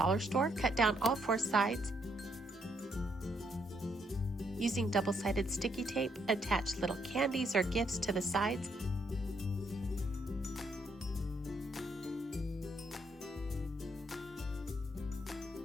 store. Cut down all 4 sides. Using double-sided sticky tape, attach little candies or gifts to the sides.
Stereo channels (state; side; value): normal; both; correlation 0.74